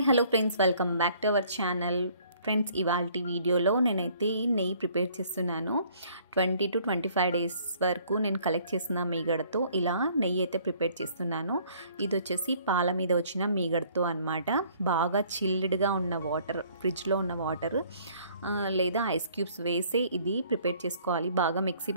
hello friends, welcome back to our channel. Friends, ఇవాల్టి వీడియోలో నేనైతే నెయ్యి ప్రిపేర్ చేస్తున్నాను. 20 to 25 డేస్ వరకు నేను కలెక్ట్ చేసిన మీగడతో ఇలా నెయ్యి అయితే ప్రిపేర్ చేస్తున్నాను. ఇది వచ్చేసి పాల మీద వచ్చిన మీగడతో అనమాట. బాగా చిల్డ్గా ఉన్న వాటర్, ఫ్రిడ్జ్లో ఉన్న వాటర్ లేదా ఐస్ క్యూబ్స్ వేసి ఇది ప్రిపేర్ చేసుకోవాలి. బాగా మిక్సీ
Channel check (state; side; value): inverted; both; correlation -0.59